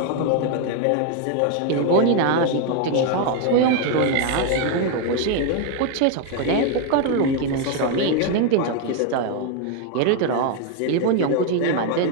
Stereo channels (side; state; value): both; different; correlation 0.01